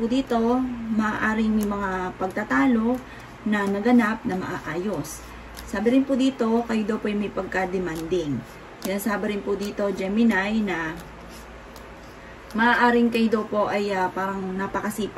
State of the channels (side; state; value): both; identical; correlation 1.00